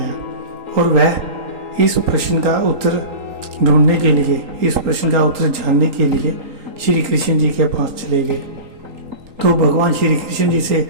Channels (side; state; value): left; late; 3.8 ms